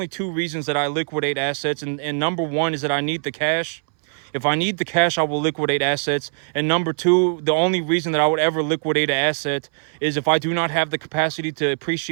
two reasons that I liquidate assets. And number one is that I need the cash. If I need the cash, I will liquidate assets. And number two, the only reason that I would ever liquidate an asset is if I do not have the capacity to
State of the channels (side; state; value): left; silent; 64 dB below the other